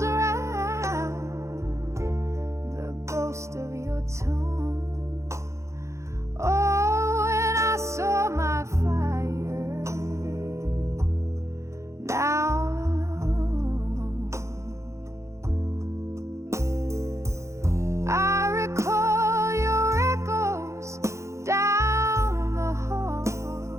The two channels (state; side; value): late; left; 0.14 ms